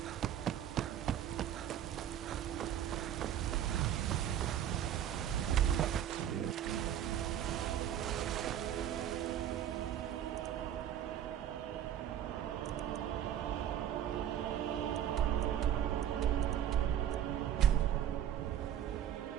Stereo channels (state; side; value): quieter; left; 10.5 dB